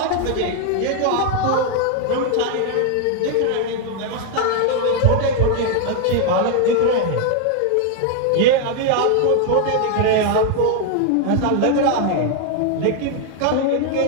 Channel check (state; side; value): different; both; correlation 0.01